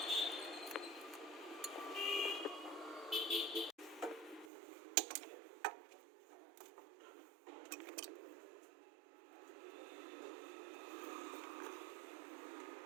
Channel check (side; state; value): left; drops out; at 4.5 s